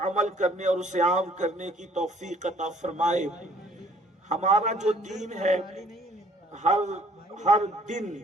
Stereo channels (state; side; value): normal; both; correlation 0.58